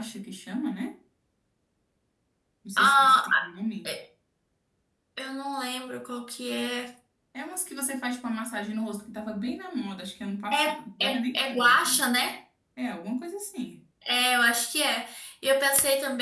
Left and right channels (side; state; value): both; identical; correlation 1.00